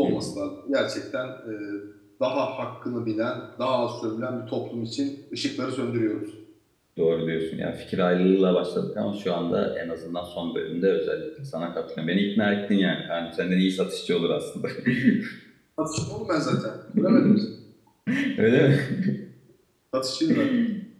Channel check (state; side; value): identical; both; correlation 1.00